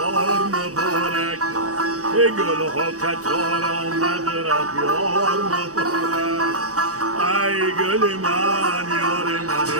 مبارک گل ها کتار آمد رفت یار مبارک ای گل من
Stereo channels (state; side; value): late; left; 0.66 ms